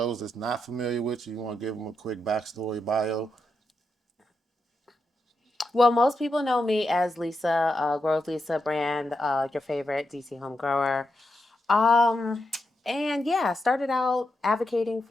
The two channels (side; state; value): both; normal; correlation 0.85